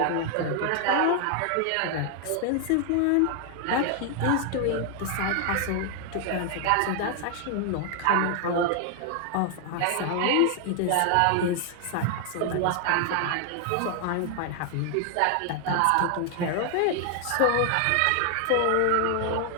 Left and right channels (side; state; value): both; different; correlation 0.00